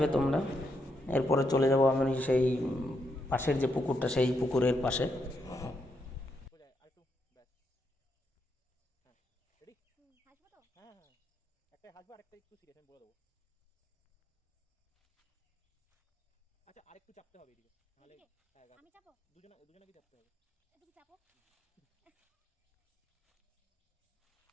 তোমরা। এরপরে চলে যাব আমি সেই পাশের যে পুকুরটা, সেই পুকুরের পাশে। আচ্ছা, আরেকটু চাপতে হবে এদিকে, নাহলে হ্যাঁ আমি চাপো, দুজনকে চাপতে হবে। এদিকে চাপো।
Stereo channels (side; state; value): both; normal; correlation 0.80